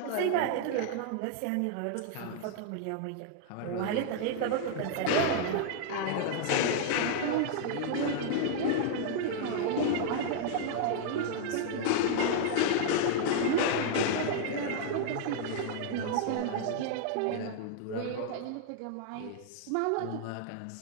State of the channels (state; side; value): different; both; correlation -0.01